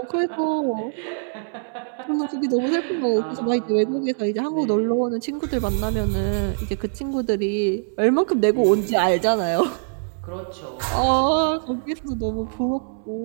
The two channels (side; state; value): left; silent; 63 dB below the other